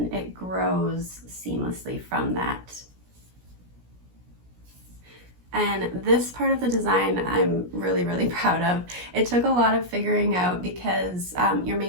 it grows seamlessly from that. And this part of the design I'm really, really proud of. It took a lot of figuring out because you're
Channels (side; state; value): left; late; 17 ms